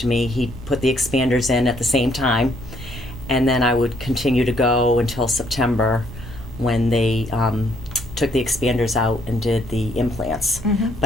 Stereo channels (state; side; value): noise; right; rumble, 16 dB below the sound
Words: He put the expanders in at the same time. And then I would continue to go until September, when they took the expanders out and did the implants.